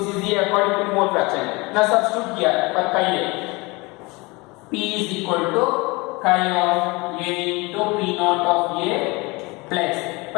is the according to mole fraction. Now substitute here for chi A. P is equal to chi of A into P naught of A plus,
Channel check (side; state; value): right; quieter; 25.1 dB